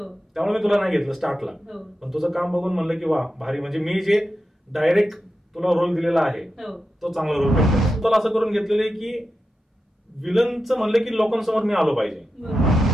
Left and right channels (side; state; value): both; normal; correlation 0.90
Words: त्यामुळे मी तुला नाही घेतलं स्टार्टला. पण तुझं काम बघून म्हणलं की वा भारी, म्हणजे मी जे डायरेक्ट तुला रोल दिलेला आहे तो चांगला रोल भेटला. तुला असं करून घेतलेलं की विलनचं म्हणलं की लोकांसमोर मी आलो पाहिजे.